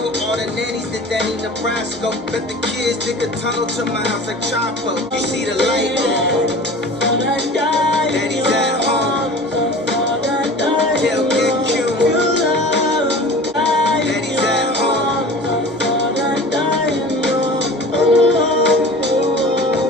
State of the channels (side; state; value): both; normal; correlation 0.40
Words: all the nannies that Danny Nebraska. Let the kids dig a tunnel to my house like Chapo. You see the light on. Daddy's at home. Tell Big Q. Daddy's at home.